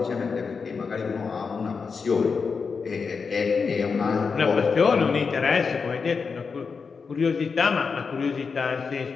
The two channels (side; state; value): right; quieter; 5.3 dB